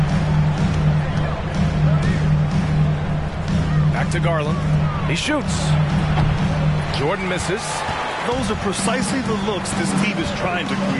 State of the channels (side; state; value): both; identical; correlation 1.00